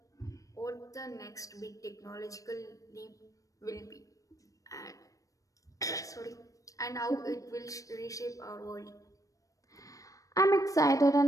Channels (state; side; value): late; right; 0.16 ms